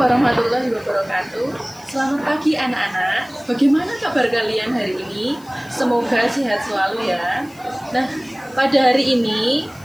wabarakatuh. Selamat pagi anak-anak. Bagaimana kabar kalian hari ini? Semoga sehat selalu ya. Nah, pada hari ini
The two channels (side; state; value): left; noise; hiss, 25 dB below the sound